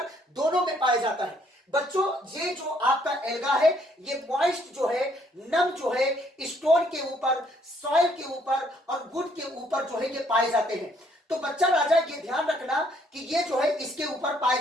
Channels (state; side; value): normal; both; correlation 0.67